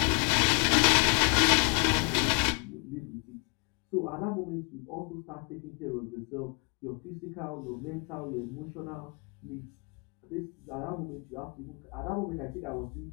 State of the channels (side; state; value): right; quieter; 35.0 dB